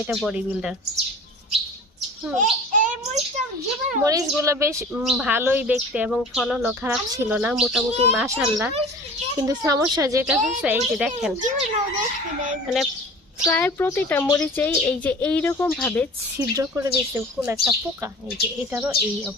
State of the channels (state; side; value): normal; both; correlation 0.41